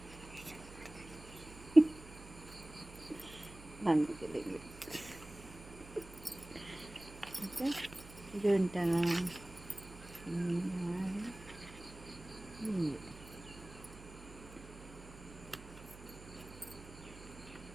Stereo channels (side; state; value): right; noise; hum, 16 dB below the sound